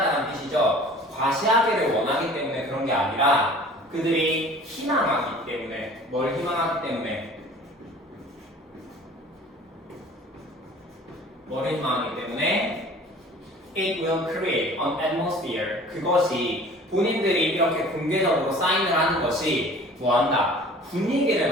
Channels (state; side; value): normal; both; correlation 0.46